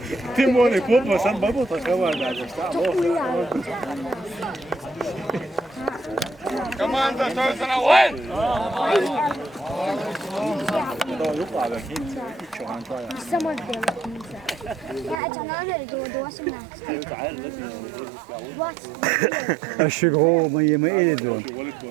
Ты море копа сам бабу такова даже. Команда остается на войн! الشجرة ما يدون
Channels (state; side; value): drops out; left; at 15.2 s